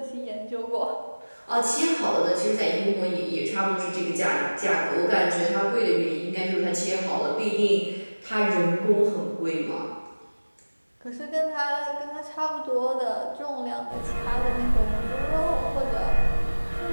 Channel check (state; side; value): inverted; both; correlation -1.00